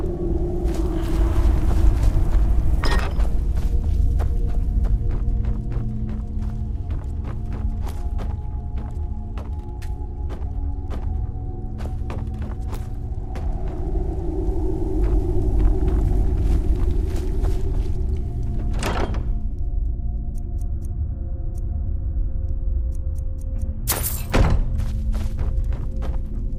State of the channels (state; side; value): identical; both; correlation 1.00